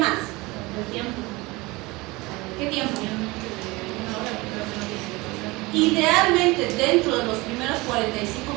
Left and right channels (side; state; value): left; quieter; 22.8 dB